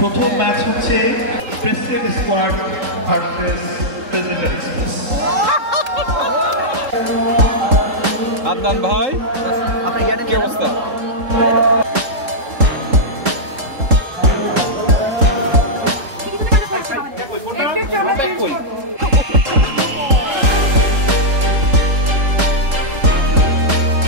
প্রথম ম্যাচ হচ্ছে president squad versus president express. Adnan ভাই, কি অবস্থা?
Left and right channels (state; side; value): late; left; 3.8 ms